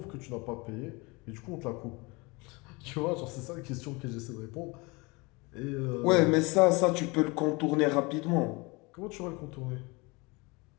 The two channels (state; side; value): quieter; right; 26.3 dB